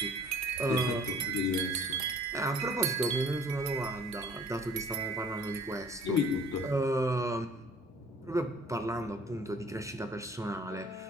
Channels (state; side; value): normal; both; correlation 0.52